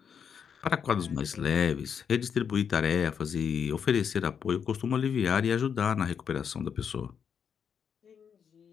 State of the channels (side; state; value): right; quieter; 7.3 dB